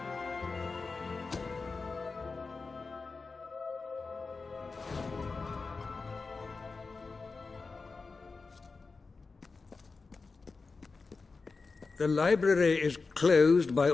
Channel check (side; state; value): right; quieter; 4.2 dB